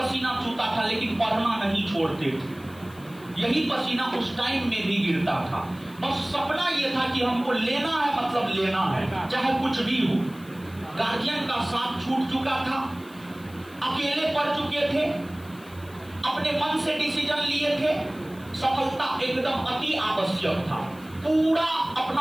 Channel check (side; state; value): left; noise; hiss, 24 dB below the sound